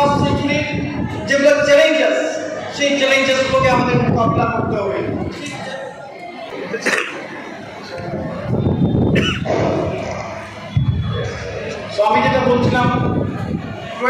সেঞ্চুরি যেগুলো চ্যালেঞ্জেস, সেই চ্যালেঞ্জেসগুলোকে আমাদের মোকাবিলা করতে হবে। তো আমি যেটা বলছিলাম,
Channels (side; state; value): both; identical; correlation 1.00